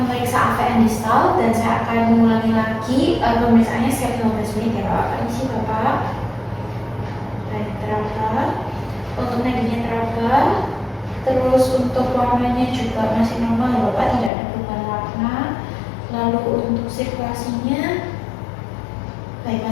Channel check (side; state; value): right; drops out; at 14.3 s